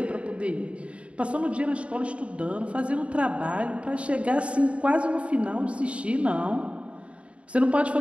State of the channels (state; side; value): late; left; 0.061 ms